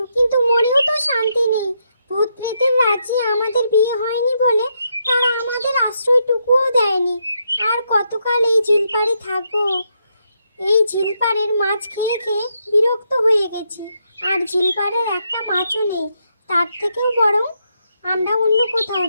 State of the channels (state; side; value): inverted; both; correlation -0.79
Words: কিন্তু মনেও তো শান্তি নেই। ভূত প্রেতের রাজ্যে আমাদের বিয়ে হয়নি বলে তারা আমাদের আশ্রয়টুকুও দেয়নি। আর কতকাল এই ঝিলপাড়ে থাকবো? এই ঝিলপাড়ের মাছ খেয়ে খেয়ে বিরক্ত হয়ে গেছি। আর ঝিলপাড়ের একটা মাছও নেই। তার থেকেও বরং আমরা অন্য কোথাও